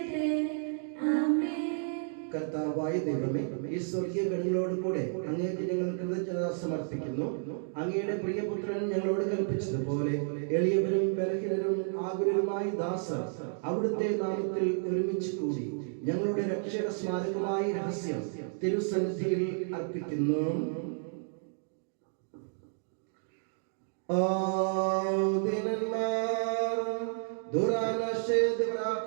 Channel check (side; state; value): left; silent; digital silence